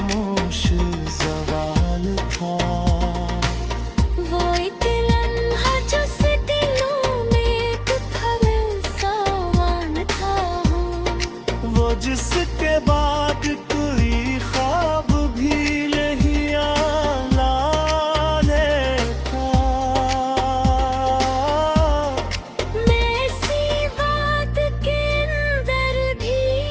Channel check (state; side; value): identical; both; correlation 1.00